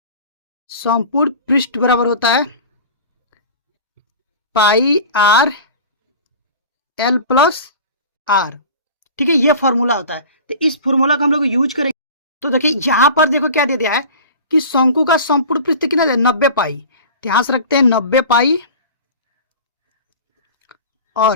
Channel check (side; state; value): both; inverted; correlation -0.38